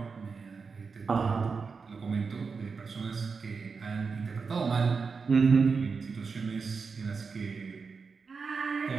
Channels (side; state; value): left; quieter; 5.0 dB